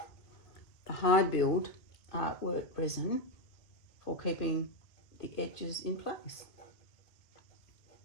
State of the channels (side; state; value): right; late; 2.2 ms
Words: Hi Build Artwork Resin, for keeping the edges in place.